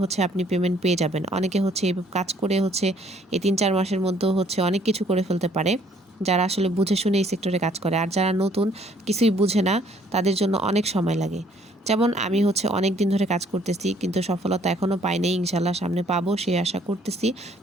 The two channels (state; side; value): normal; both; correlation 0.62